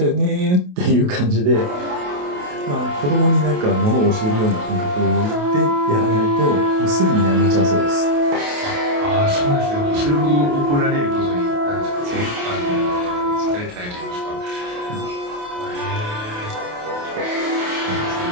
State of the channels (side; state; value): left; late; 28 ms